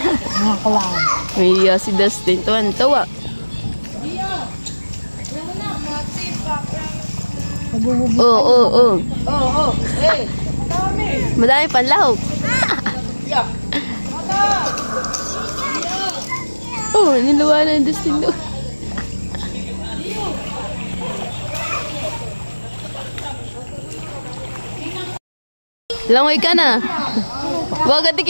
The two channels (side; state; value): both; inverted; correlation -1.00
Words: Mga kulang. May si Dustin. Tuwan-tawa. Oo. Madami panlahok. Niluwa na yung Dustin doon. Langoy ka na. Huwag ka